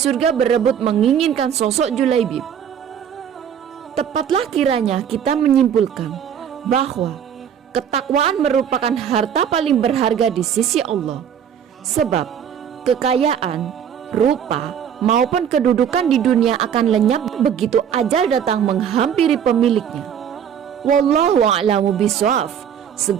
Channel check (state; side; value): quieter; left; 8.6 dB